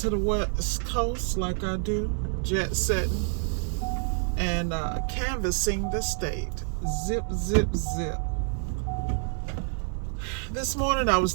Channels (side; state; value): left; silent; 56 dB below the other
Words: the West Coast like I do. Jet setting and canvassing the state. Zip, zip, zip. This morning I was